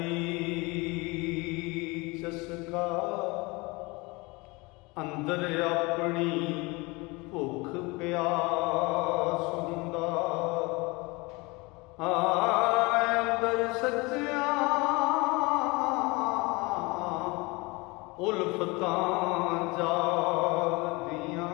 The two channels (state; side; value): quieter; right; 25.4 dB